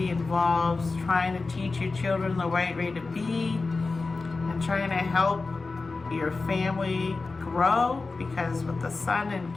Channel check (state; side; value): quieter; right; 3.8 dB